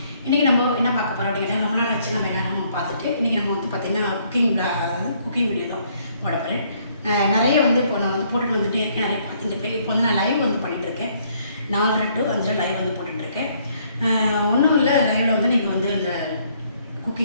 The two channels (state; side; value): inverted; both; correlation -0.66